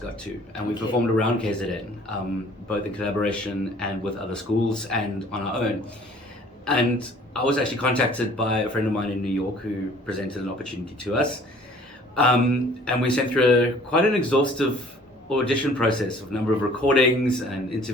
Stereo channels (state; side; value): normal; both; correlation 0.53